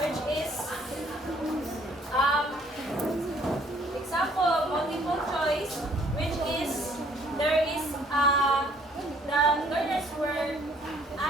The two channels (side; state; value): both; normal; correlation 0.61